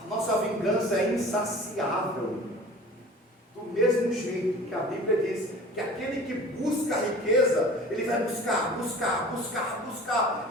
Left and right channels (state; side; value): normal; both; correlation 0.42